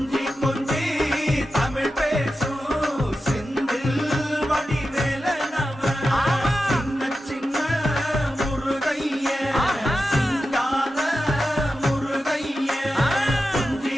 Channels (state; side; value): normal; both; correlation 0.91